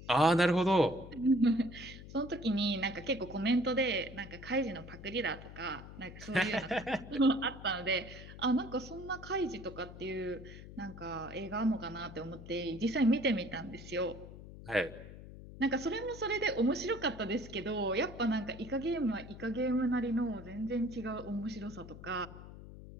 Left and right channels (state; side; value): noise; left; hum, 14 dB below the sound